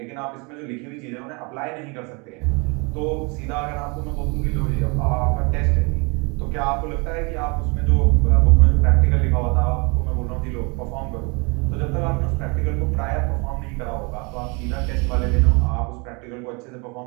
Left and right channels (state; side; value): quieter; left; 30.5 dB